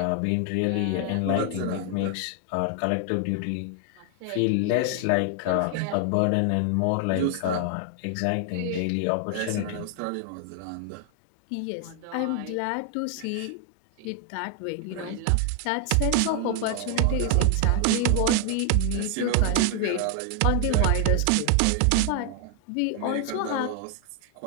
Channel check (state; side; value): different; both; correlation 0.00